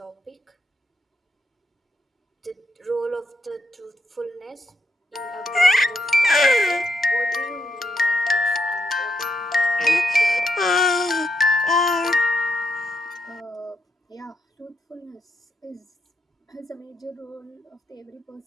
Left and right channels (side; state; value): both; normal; correlation 0.80